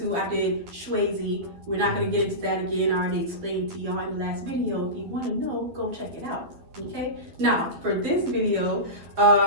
I did SHEA. We're not going to get into that again. I already explained to y'all in the last video. If you want to know, go check it out. Okay? Now, for this video,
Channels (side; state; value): left; late; 12 ms